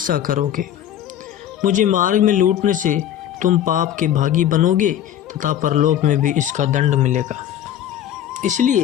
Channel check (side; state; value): right; quieter; 10.9 dB